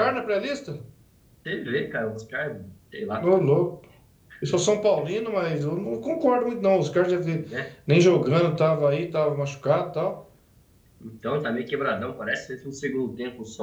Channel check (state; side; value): identical; both; correlation 1.00